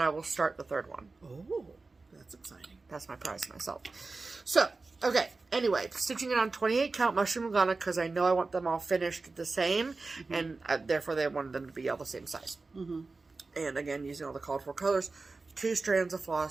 will start the third one. Oh, that's exciting. That's my prize to myself. So, okay, anyway, stitching it on 28 count mushroom Lugana because I know I want them all finished the same, and therefore they wanted them to be all the same size. And again, using all the called for colors, 2 strands of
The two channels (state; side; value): quieter; left; 3.8 dB